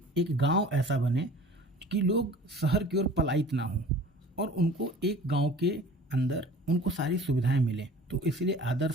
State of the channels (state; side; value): normal; both; correlation 0.44